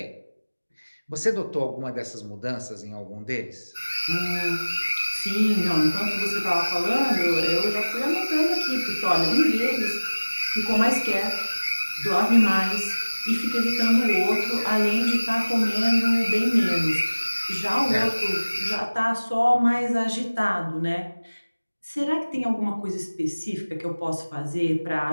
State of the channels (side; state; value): both; inverted; correlation -1.00